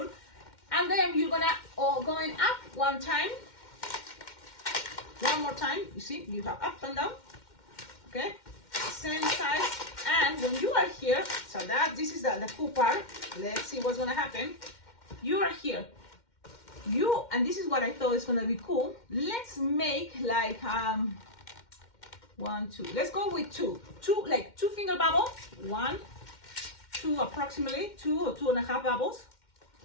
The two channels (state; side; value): late; right; 2.1 ms